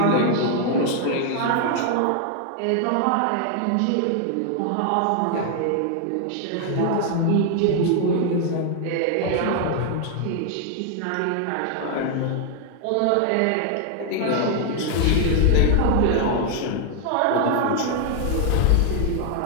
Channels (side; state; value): both; different; correlation 0.00